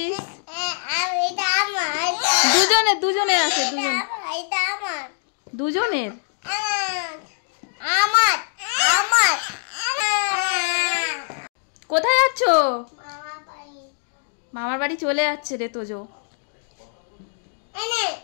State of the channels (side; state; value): right; silent; digital silence